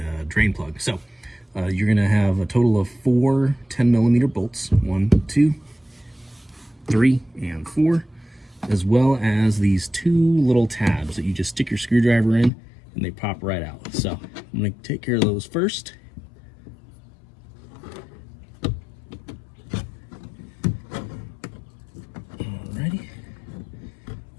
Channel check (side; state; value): right; drops out; at 12.5 s